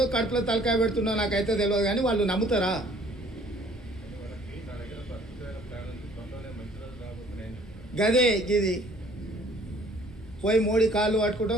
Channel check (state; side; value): normal; both; correlation 0.57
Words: కడుపులో తలకాయ పెడుతుండో నాకైతే తెలియదు, కానీ వాళ్ళు నమ్ముతారా? గదే ఇది పోయి మోడీ కాళ్ళు